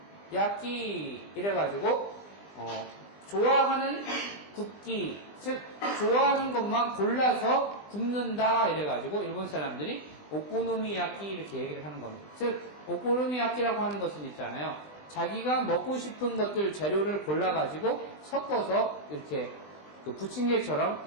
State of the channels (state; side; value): late; right; 20 ms